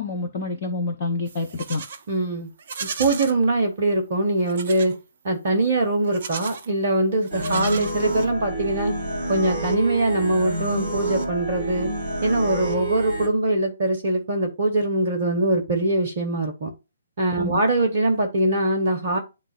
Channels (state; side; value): inverted; both; correlation -0.67